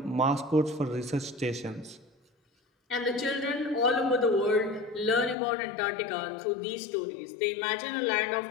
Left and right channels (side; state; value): right; drops out; at 5.4 s